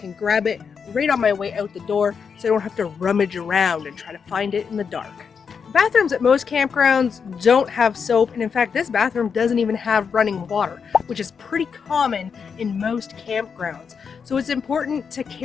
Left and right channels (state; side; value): quieter; right; 6.2 dB